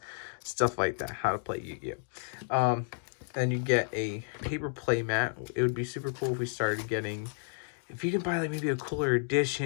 stuff like that, how to play Yu-Gi-Oh. Then you get a paper play mat. It would be super cool if we started getting, if you can buy like maybe a cooler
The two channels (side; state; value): right; silent; digital silence